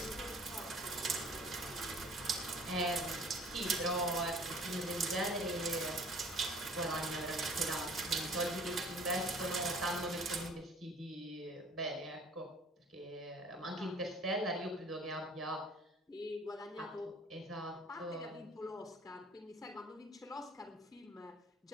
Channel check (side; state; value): both; normal; correlation 0.52